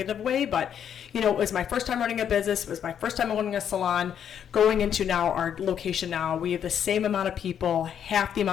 way, but it was my first time running a business. It was my first time owning a salon. Going into now our location now, we have the same amount of people, half the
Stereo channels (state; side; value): quieter; right; 8.8 dB